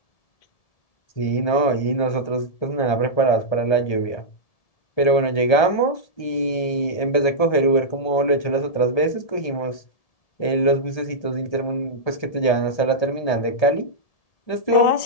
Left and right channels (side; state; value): right; late; 1.3 ms